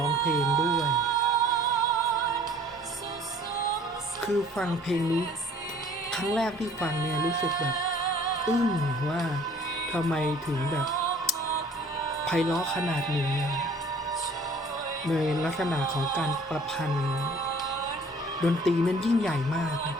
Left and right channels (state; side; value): normal; both; correlation 0.53